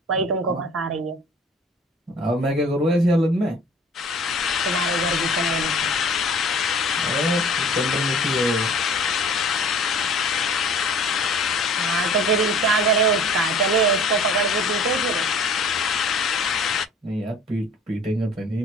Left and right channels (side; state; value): both; normal; correlation 0.47